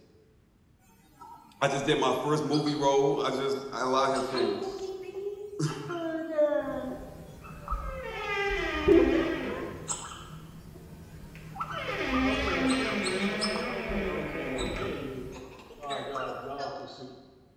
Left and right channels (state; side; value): identical; both; correlation 1.00